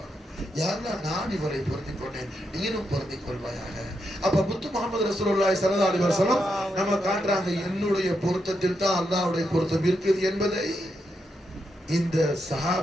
யா அல்லாஹ் நான் இவரை பொருந்திக் கொண்டேன், நீனும் பொருந்திக் கொள்வாயாக. அப்ப முத்து முஹம்மது ரசூலுல்லாஹி ஸல்லல்லாஹு அலைஹி வஸல்லம் நம்ம காட்டுறாங்க, என்னுடைய பொருத்தத்தில் தான் அல்லாஹ்வுடைய பொருத்தம் இருக்குது என்பதை இந்த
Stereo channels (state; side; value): normal; both; correlation 0.83